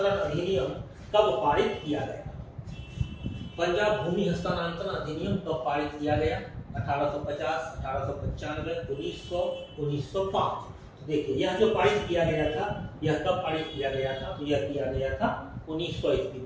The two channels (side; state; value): both; identical; correlation 1.00